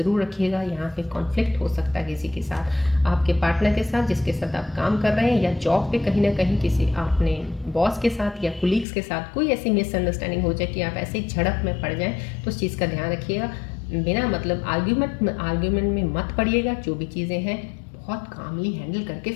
रखिएगा। यहाँ पे कॉन्फ्लिक्ट हो सकता है किसी के साथ, आपके पार्टनर के साथ जिसके साथ आप काम कर रहे हैं, या जॉब पे कहीं ना कहीं किसी आपने बॉस के साथ या कुलीग्स के साथ कोई ऐसी मिसअंडरस्टैंडिंग हो जाए कि आप ऐसे ही झड़प में पड़ जाएँ, तो उस चीज़ का ध्यान रखिएगा। बिना मतलब आर्ग्यूमेंट में मत पड़िएगा। जो भी चीज़ें हैं बहुत कामली हैंडल करके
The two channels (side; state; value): right; drops out; at 8.8 s